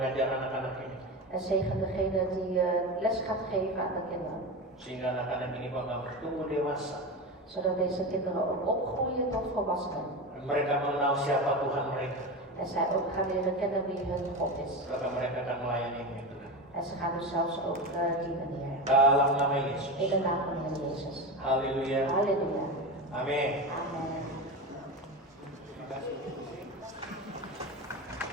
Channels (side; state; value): both; normal; correlation 0.22